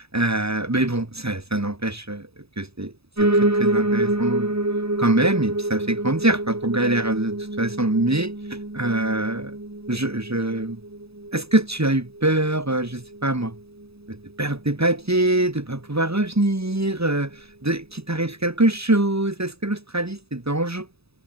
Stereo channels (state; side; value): late; left; 0.78 ms